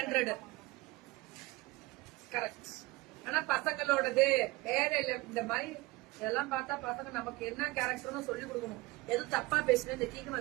கரெக்ட். ஆனா பசங்களோடது வேற இல்ல. இந்த மாதிரி இதெல்லாம் பார்த்தா பசங்க நமக்கு என்ன கேரக்டர்னு சொல்லி கொடுக்கணும். எதுவும் தப்பா பேசுனேன் இந்த டீக்கு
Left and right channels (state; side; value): quieter; left; 21.2 dB